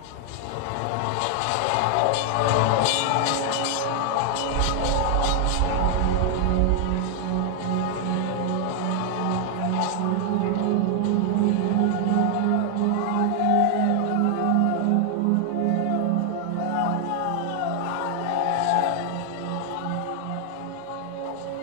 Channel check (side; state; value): both; different; correlation 0.00